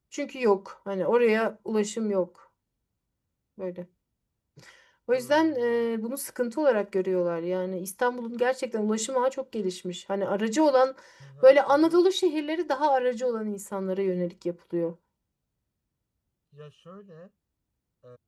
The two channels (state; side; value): identical; both; correlation 1.00